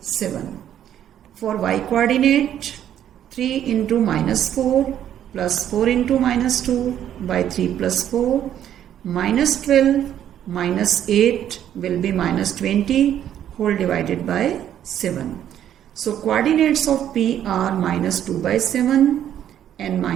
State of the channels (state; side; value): quieter; left; 10.6 dB